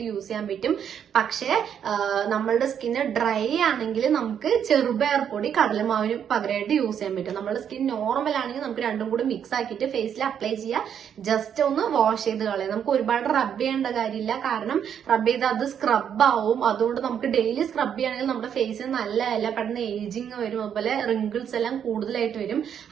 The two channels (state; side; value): quieter; left; 8.5 dB